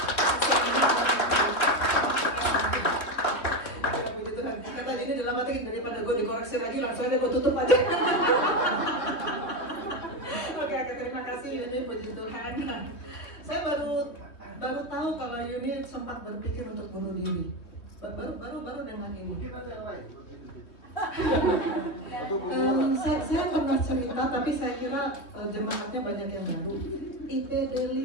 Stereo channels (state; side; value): late; right; 3.2 ms